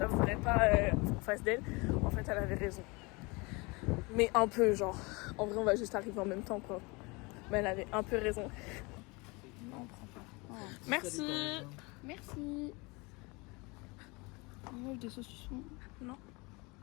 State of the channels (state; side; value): quieter; right; 26.9 dB